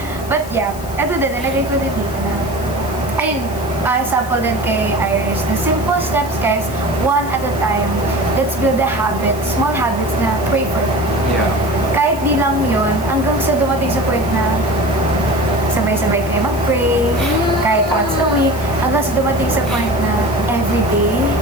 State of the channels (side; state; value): left; noise; hiss, 17 dB below the sound